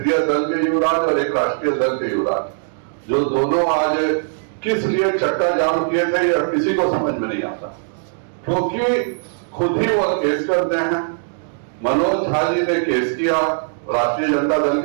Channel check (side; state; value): left; silent; digital silence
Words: दल के युवराज और एक राष्ट्रीय दल के युवराज, जो दोनों आज किस लिए चक्का जाम किए थे यह किसी को समझ में नहीं आता, क्योंकि खुद ही वह केस करते हैं। मनोज झा जी ने केस किया, राष्ट्रीय जनता दल